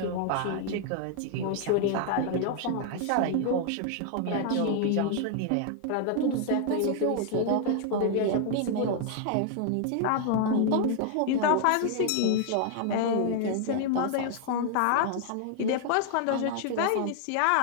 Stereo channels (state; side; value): different; both; correlation 0.00